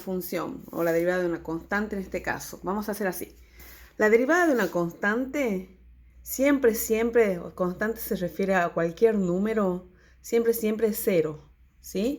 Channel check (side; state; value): both; identical; correlation 1.00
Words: o la derivada de una constante en este caso. Vamos a hacer así. La derivada de una constante, siempre, constante se refiere a cualquier número, siempre es cero,